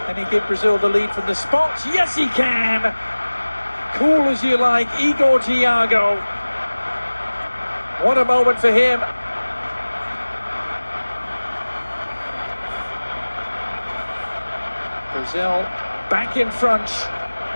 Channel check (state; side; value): inverted; both; correlation -1.00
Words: Can he give Brazil the lead from the spot? Yes, he can! Cool as you like, Igor Thiago. What a moment for him. Brazil back in front,